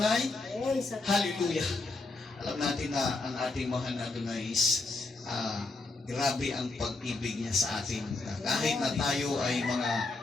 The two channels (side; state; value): right; quieter; 3.4 dB